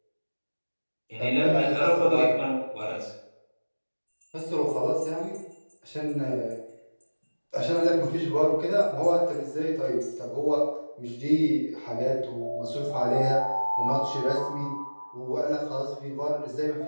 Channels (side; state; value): both; inverted; correlation -1.00